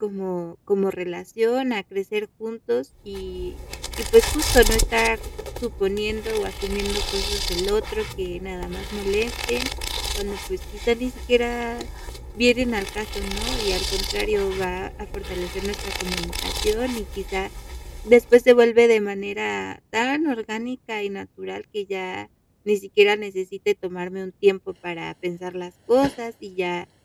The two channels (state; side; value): identical; both; correlation 1.00